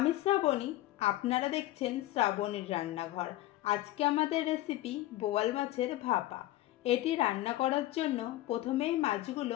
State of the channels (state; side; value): quieter; right; 15.8 dB